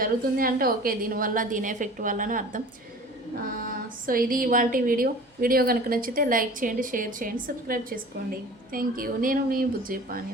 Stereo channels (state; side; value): normal; both; correlation 0.42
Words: అంటే ఓకే, దీనివల్ల దీని ఎఫెక్ట్ వల్ల అని అర్థం. సో ఇది ఇవాల్టి వీడియో కనుక నచ్చితే లైక్ చేయండి, షేర్ చేయండి, సబ్స్క్రైబ్ చేసుకోండి. Thank you. నేను మీ బుజ్జి